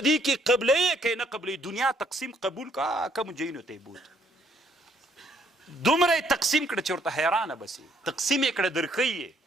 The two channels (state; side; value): normal; both; correlation 0.67